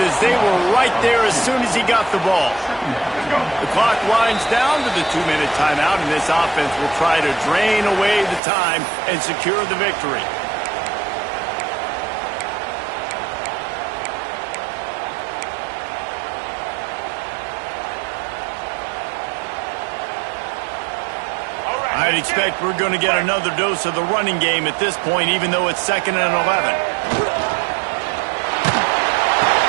as they were right there as soon as he got the ball. The clock winds down to the 2-minute timeout, and this offense will try to drain away the time and secure the victory. I'd expect we're going to get another dose of the running game at this point, even though it's 2nd and 11.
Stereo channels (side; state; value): left; drops out; at 8.4 s